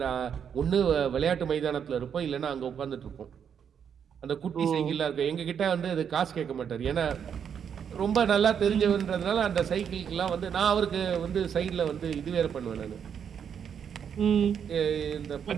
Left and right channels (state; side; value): quieter; left; 7.8 dB